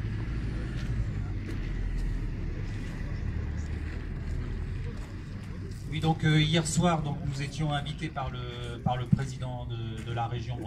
Oui, donc hier soir, donc, nous étions invités par le président de la région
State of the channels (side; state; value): both; identical; correlation 1.00